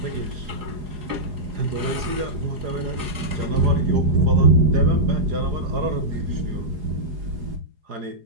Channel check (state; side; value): late; left; 4.8 ms